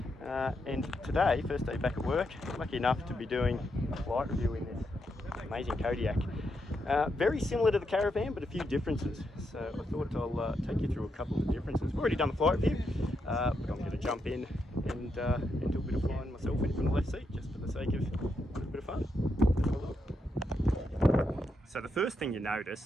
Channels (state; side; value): normal; both; correlation 0.82